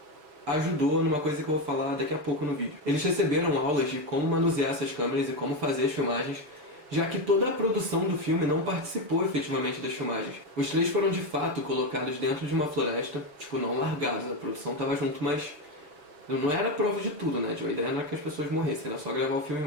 ajudou numa coisa que eu vou falar daqui a pouco no vídeo. Eles receberam aulas de como manusear essas câmeras e como fazer as filmagens, já que toda a produção do filme não participou efetivamente das filmagens. Os 3 foram de fato colocados dentro de uma floresta, tipo, não largados, a produção estava junto, mas não era prova de tudo, né? A ideia não era que as pessoas morressem, era só gravar o filme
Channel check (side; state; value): left; late; 6.6 ms